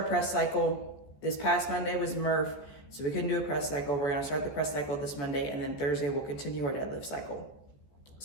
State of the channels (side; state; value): right; late; 14 ms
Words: press cycle. This past Monday was Murph, so we couldn't do a press cycle. We're gonna start the press cycle this Monday, and then Thursday we'll continue our deadlift cycle.